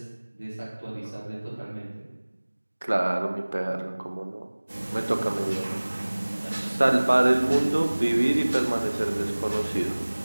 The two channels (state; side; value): inverted; both; correlation -1.00